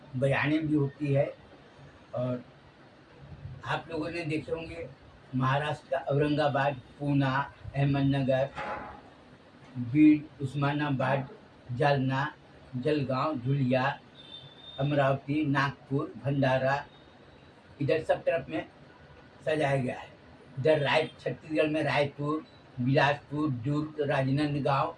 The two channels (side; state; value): both; identical; correlation 1.00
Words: बयानें भी होती है। और आप लोगों ने देखे होंगे महाराष्ट्र का औरंगाबाद, पूना, अहमदनगर, बीड, उस्मानाबाद, जालना, जलगांव, धुलिया, अमरावती, नागपुर, भंडारा, इधर सब तरफ में सजाया गया है। इधर छत्तीसगढ़ में रायपुर, बिलासपुर, दुर्ग, राजनांदगांव,